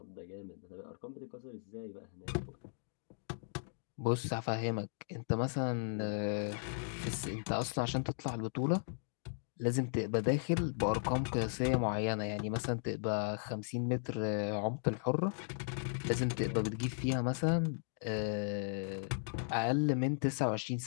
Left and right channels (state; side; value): silent; right; digital silence